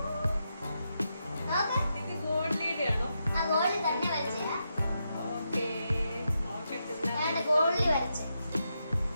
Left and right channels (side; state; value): both; inverted; correlation -0.84